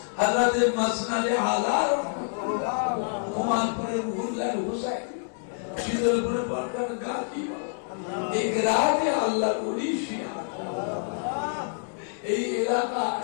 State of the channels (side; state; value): right; silent; digital silence